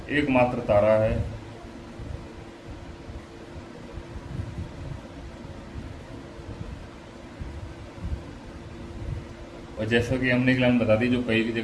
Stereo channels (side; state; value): both; identical; correlation 1.00